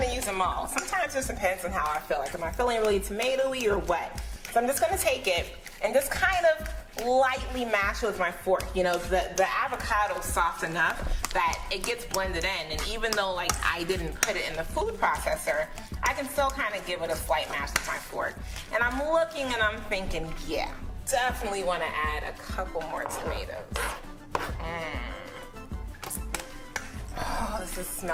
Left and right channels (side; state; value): both; identical; correlation 1.00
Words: use them all. Sometimes it just depends on how I feel. Like, am I feeling really tomatoey or what? So I'm just gonna take it and just kind of lightly mash it with my fork. You know, the avocado's soft enough that it gets blended in. And even though like I didn't put it in the food processor, I can still kind of give it a slight mash with my fork. And I'm looking and I'm thinking, yeah, definitely wanna add a couple more tomatoes. Oh, this is